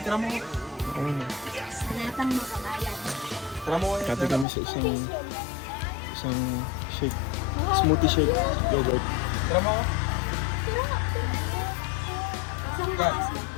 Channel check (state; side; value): drops out; right; at 4.5 s